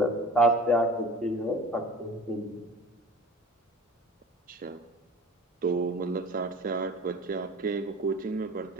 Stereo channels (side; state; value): both; normal; correlation 0.41